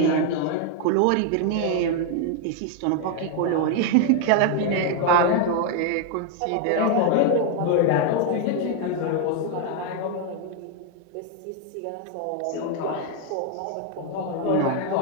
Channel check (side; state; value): both; different; correlation 0.00